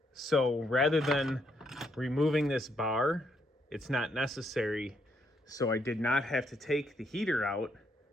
So rather than removing this bar, it's not necessary. So I did not have to take the heater out,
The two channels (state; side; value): normal; both; correlation 0.74